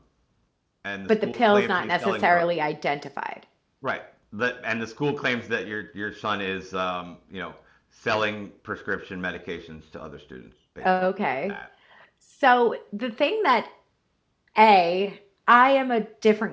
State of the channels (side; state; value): both; identical; correlation 1.00